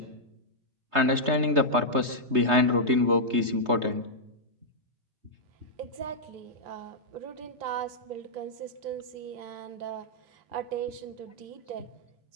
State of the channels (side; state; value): left; late; 3.2 ms